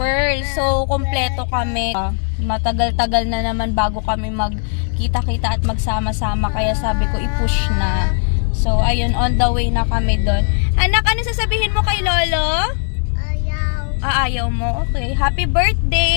So, kompleto kami. Matagal-tagal na naman bago kami magkita-kita at magsama-sama. Kaya sabi ko, i-push na. So, ayun, on the way na kami doon. Anak, ano sasabihin mo kay Lolo? Ayaw. Ayaw mo? Okay. Happy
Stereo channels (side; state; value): right; silent; 59 dB below the other